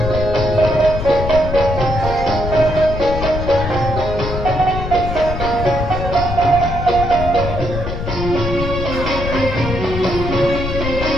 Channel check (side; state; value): left; noise; rumble, 5 dB below the sound